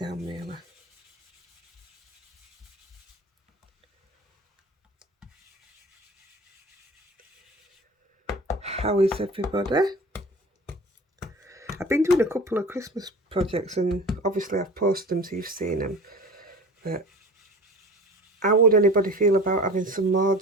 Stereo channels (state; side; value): normal; both; correlation 0.38